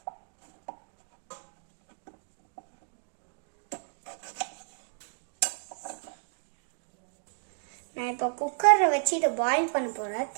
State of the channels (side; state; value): left; silent; digital silence